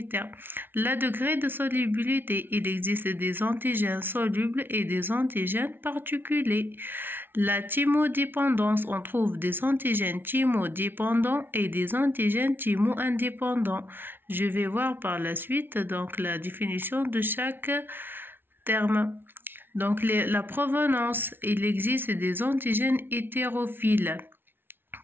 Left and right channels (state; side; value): late; left; 0.10 ms